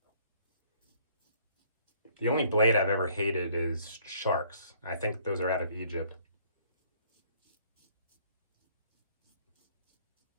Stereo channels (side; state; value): both; inverted; correlation -0.61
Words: The only blade I've ever hated is sharks. I think those are out of Egypt.